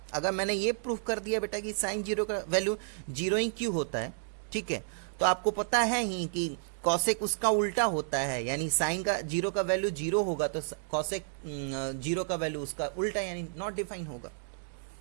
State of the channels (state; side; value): silent; left; digital silence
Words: अगर मैंने ये प्रूफ कर दिया बेटा कि साइन 0 का वैल्यू 0 ही क्यों होता है, ठीक है, तो आपको पता है ही कि कॉसेक उसका उल्टा होता है, यानी साइन का 0 का वैल्यू 0 होगा तो कॉसेक 0 का वैल्यू उसका उल्टा यानी नॉट डिफाइन होगा।